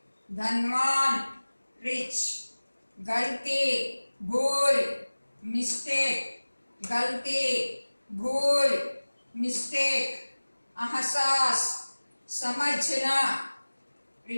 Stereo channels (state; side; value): inverted; both; correlation -1.00